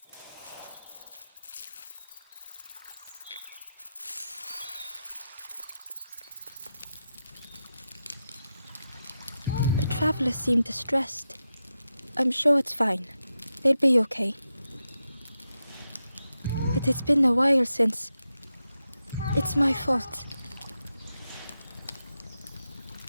traveler seemed distressed. I'm sure it's fine. They'll be okay. But it's been a while since. It's my fault.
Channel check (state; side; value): inverted; both; correlation -0.89